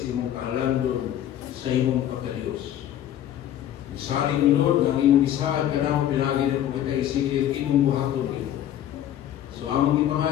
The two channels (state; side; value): quieter; right; 11.4 dB